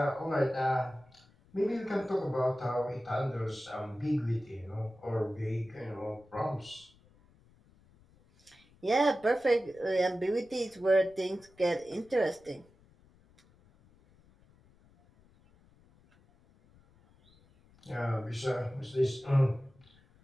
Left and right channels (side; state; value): left; noise; rumble, 29 dB below the sound